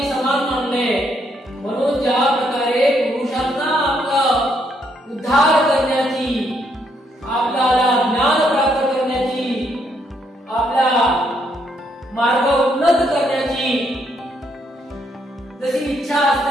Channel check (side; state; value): both; normal; correlation 0.73